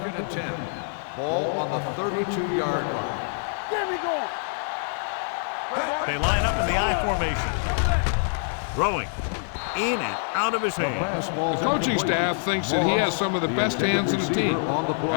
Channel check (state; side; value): silent; right; 61 dB below the other